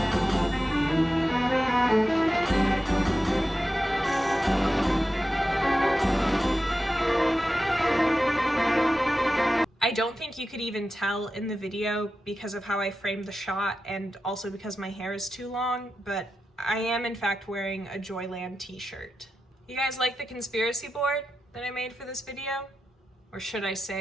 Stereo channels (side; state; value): both; normal; correlation 0.91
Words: don't think you could even tell in the video because of how I framed the shot and also because my hair is too long, but I am in fact wearing a Joyland t-shirt. You guys like the conspiracy board that I made for this video? Or should I